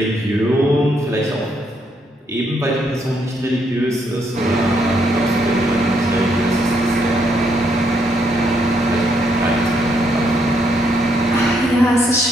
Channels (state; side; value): normal; both; correlation 0.74